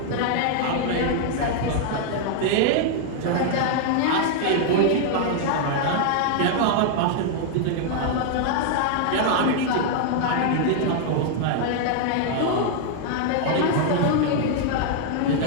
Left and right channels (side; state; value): both; different; correlation 0.00